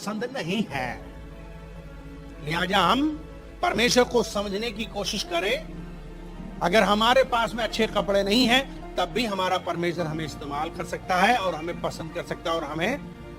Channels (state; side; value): identical; both; correlation 1.00